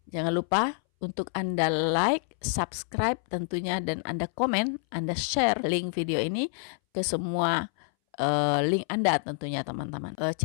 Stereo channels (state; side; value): silent; right; 60 dB below the other